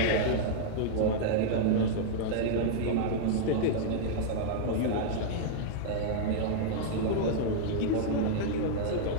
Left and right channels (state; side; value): different; both; correlation -0.01